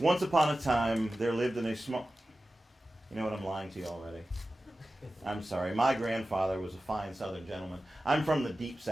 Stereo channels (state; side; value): normal; both; correlation 0.94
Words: upon a time, there lived in a small... You know what? I'm lying to you already. I'm sorry. My grandfather was a fine Southern gentleman. I'm from the deep